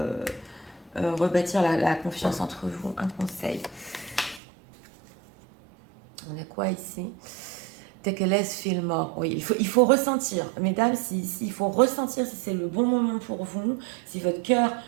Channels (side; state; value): left; drops out; at 4.4 s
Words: rebâtir la confiance entre vous. Un conseil. On a quoi ici? Take a less, feel more. Oui, il faut ressentir. Mesdames, il faut ressentir si c'est le bon moment pour vous, si votre cœur